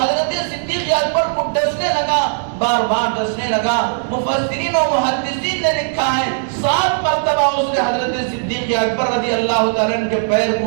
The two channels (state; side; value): silent; left; digital silence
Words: حضرت صدیق اکبر کو ڈسنے لگا، بار بار ڈسنے لگا۔ مفسرین و محدثین نے لکھا ہے 7 مرتبہ اس نے حضرت صدیق اکبر رضی اللہ تعالیٰ عنہ کے پیر